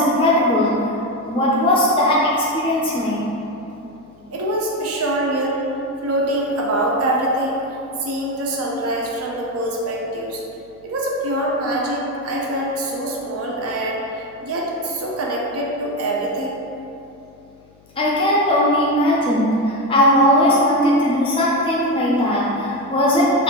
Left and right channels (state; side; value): noise; left; hum, 29 dB below the sound